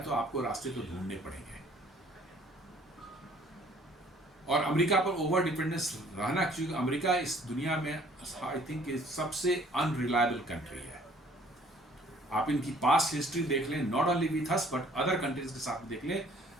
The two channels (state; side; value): normal; both; correlation 0.57